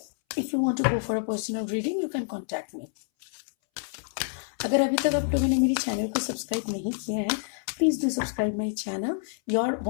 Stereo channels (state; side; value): silent; right; 60 dB below the other